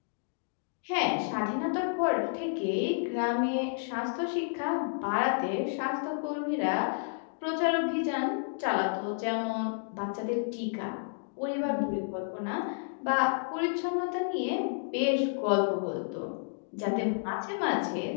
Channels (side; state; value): right; silent; digital silence